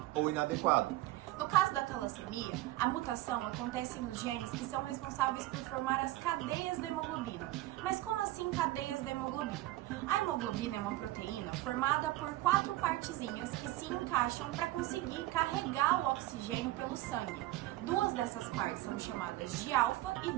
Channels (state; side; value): quieter; left; 17.0 dB